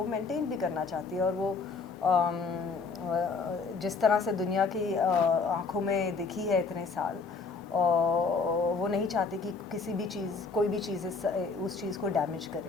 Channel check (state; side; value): quieter; right; 4.5 dB